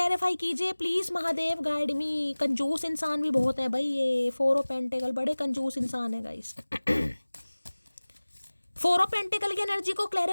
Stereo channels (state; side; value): inverted; both; correlation -1.00